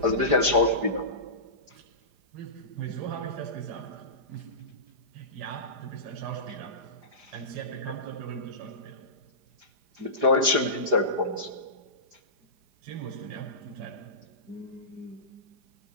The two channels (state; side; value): late; left; 4.9 ms